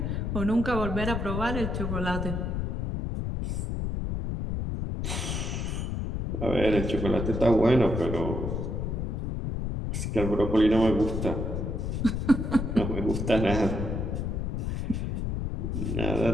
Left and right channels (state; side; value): noise; left; rumble, 2 dB below the sound